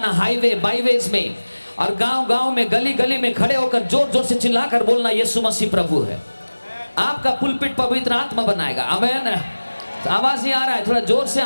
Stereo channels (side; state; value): both; inverted; correlation -1.00